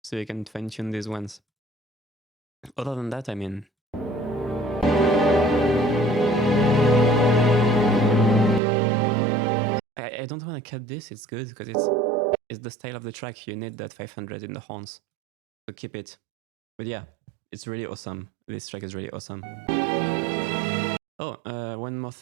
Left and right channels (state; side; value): drops out; left; at 8.6 s